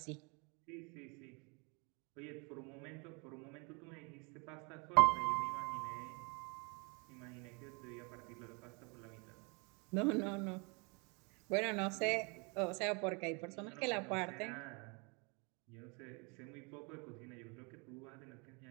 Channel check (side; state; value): left; quieter; 31.6 dB